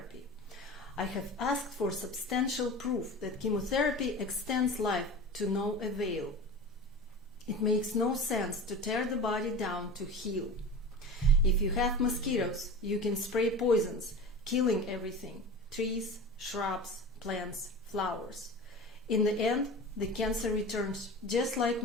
I have asked for substantial proof that chemotherapy extends life to no avail. It makes no sense to tear the body down to heal. If you have mosquitoes, you can spray poisons, killing everything: trees, shrubs, plants, flowers. In the end, the cancer returns just like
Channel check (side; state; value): both; normal; correlation 0.33